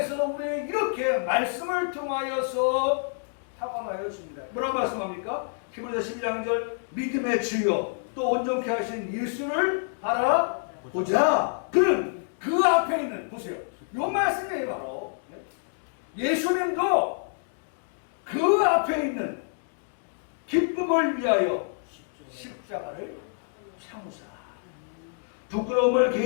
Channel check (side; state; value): right; silent; digital silence